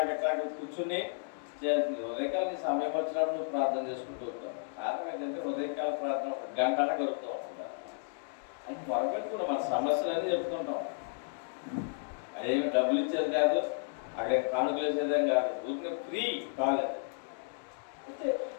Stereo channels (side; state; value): right; silent; digital silence